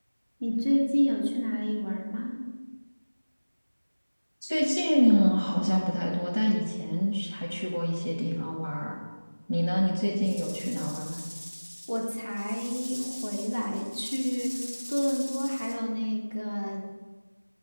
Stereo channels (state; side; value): inverted; both; correlation -1.00